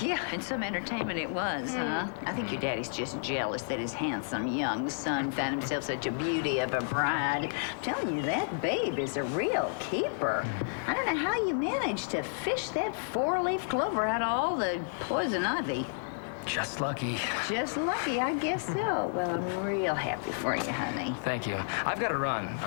Yeah, and some entertainment it was, huh? I think your daddy's just jealous that his handsome young son found himself such a beauty of a bride. I'm telling you, that babe is a real keeper. I don't know how you managed to fish that four-leaf clover out of all the poison ivy. Just lucky. Just lucky, I guess so. Well, I'm real happy for you, honey. Thank you. I've got to run.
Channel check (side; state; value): right; silent; digital silence